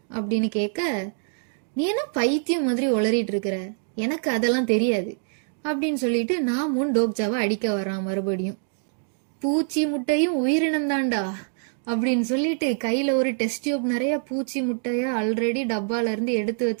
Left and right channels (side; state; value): left; silent; 62 dB below the other